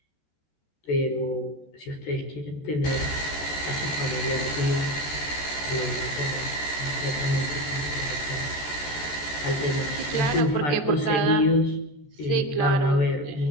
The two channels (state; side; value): late; right; 14 ms